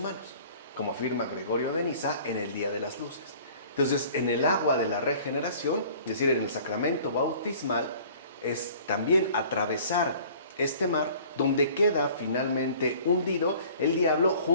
como afirma Gregorio de Niza en el Día de las Luces. Entonces, en el agua de la regeneración, es decir, en el sacramento bautismal, es también atravesar este mar donde queda finalmente hundido el diablo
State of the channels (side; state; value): both; inverted; correlation -0.49